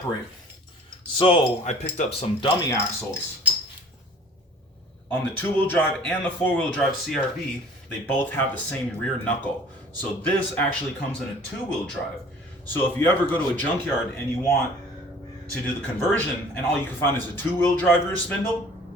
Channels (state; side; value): normal; both; correlation 0.50